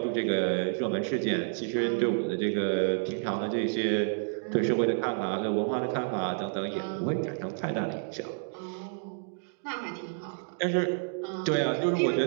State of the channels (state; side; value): silent; left; digital silence